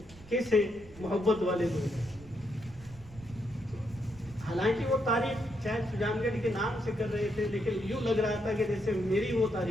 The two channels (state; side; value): noise; right; rumble, 20 dB below the sound